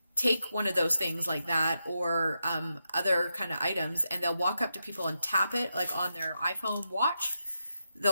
take one of those things like that or other kind of items, and they'll walk up to people and tap it like on their iPhone watch.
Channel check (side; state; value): both; inverted; correlation -0.86